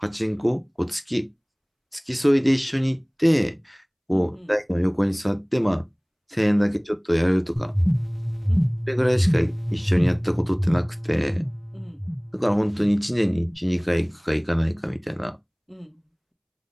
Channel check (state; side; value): identical; both; correlation 1.00